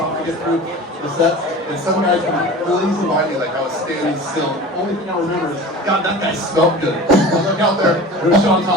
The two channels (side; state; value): both; normal; correlation 0.36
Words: to get through the sets, and some guys come really easy by me like I was standing still. Only thing I remember is, God, that guy smelled good. I look out there, there's Shaun